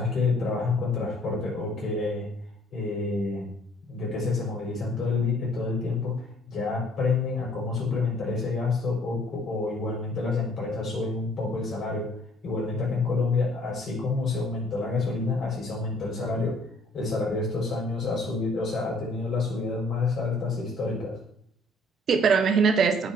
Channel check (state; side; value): normal; both; correlation 0.59